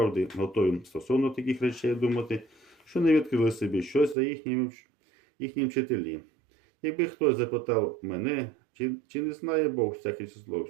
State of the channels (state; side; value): drops out; left; at 4.2 s